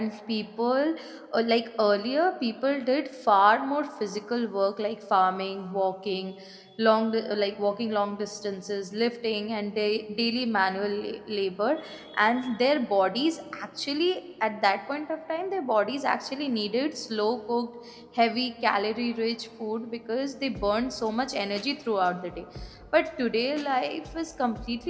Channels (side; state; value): both; identical; correlation 1.00